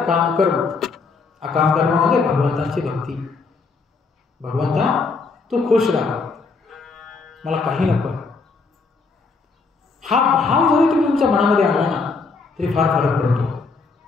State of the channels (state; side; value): quieter; right; 4.3 dB